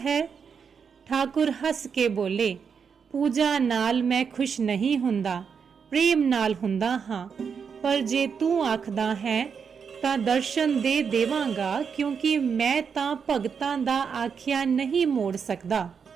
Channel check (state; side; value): quieter; left; 6.4 dB